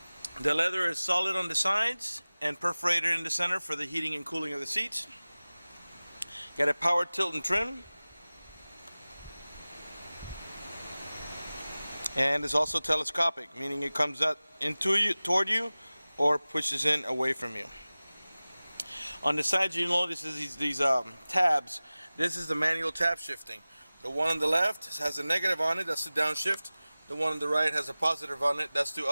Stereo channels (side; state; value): both; inverted; correlation -0.98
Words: The leather is solid on the sides and perforated in the center for the heating and cooling of the seats. Got a power tilt and trim. And it's also telescopic, meaning it comes out toward you or pushes in away from you. On the sides, you notice these tabs. This is the manual tab shifting. The one on the left has a negative on it, that's the downshift. The one on the right has a positive on it, that's the